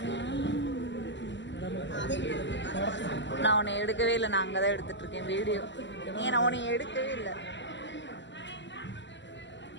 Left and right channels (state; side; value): late; right; 0.53 ms